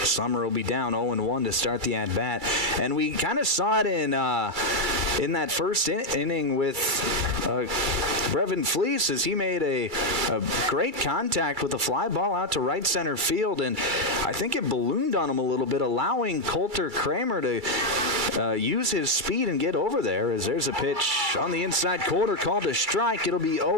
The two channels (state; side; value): late; left; 2.3 ms